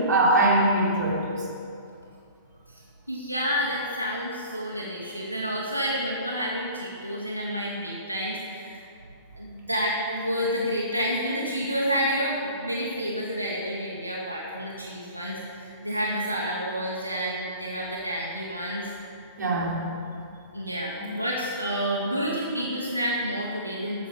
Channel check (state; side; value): inverted; both; correlation -0.44